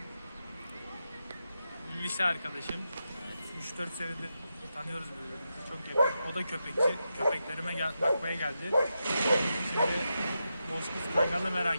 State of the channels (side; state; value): both; inverted; correlation -0.88